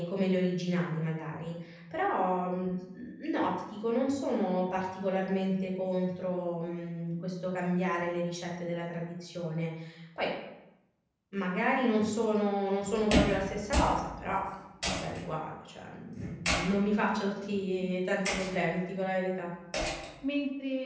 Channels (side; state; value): both; identical; correlation 1.00